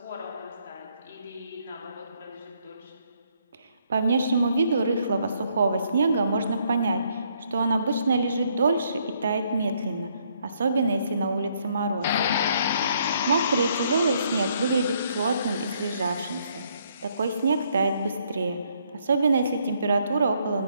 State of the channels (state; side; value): inverted; both; correlation -0.70